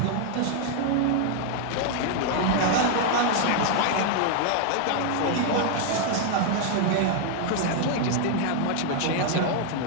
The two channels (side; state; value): both; different; correlation 0.00